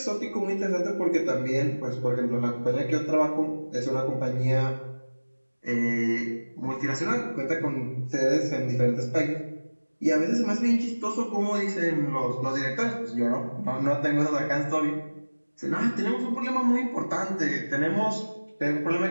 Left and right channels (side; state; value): both; inverted; correlation -1.00